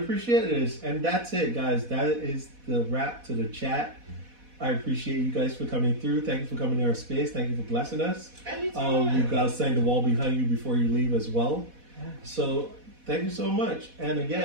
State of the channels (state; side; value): late; left; 4.1 ms